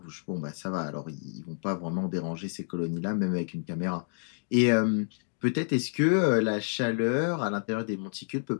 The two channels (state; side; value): silent; right; digital silence